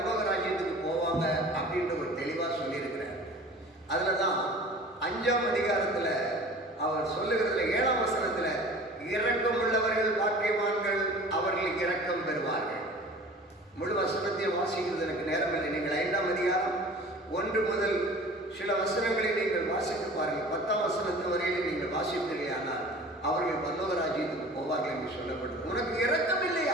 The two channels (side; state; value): both; normal; correlation 0.43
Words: ராஜ்யத்துக்கு போவாங்க அப்படின்ற ஒரு தெளிவாக சொல்லியிருக்கிறார். அதில் தான் 5ஆம் அதிகாரத்தில் அவர் சொல்லுகிறதுல 7ஆம் வசனத்தில், இரக்கம் உள்ளவர்கள் பாக்கியவான்கள், அவர்களுக்கு இரக்கம் பெறுவார்கள். முழு வசனத்தையும் வாசிக்கிறது எனக்கு நேரம் இல்லை. நீங்கள் 5ஆம் அதிகாரம் 1 முதல் சில வசனங்களை நீங்கள் வாசித்து பாருங்கள். 10ஆம் வசனத்து வரையிலும் நீங்கள் வாசிப்பீர்கள். ஆனால் அவர்கள் பரலோக ராஜ்யத்துக்கு போவார்கள் என்று சொல்லப்பட்டது. உனக்கு இரக்கம்